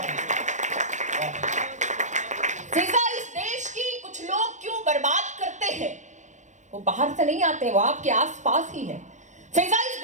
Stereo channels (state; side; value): late; left; 0.35 ms